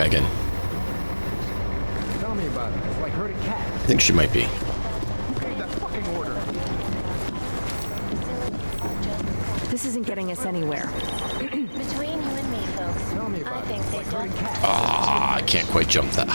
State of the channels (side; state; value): both; inverted; correlation -1.00